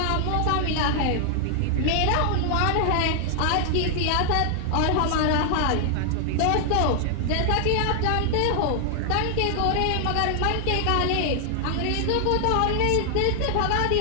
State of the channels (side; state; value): both; different; correlation 0.00